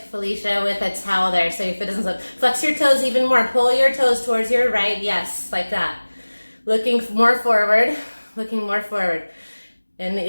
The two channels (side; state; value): both; inverted; correlation -1.00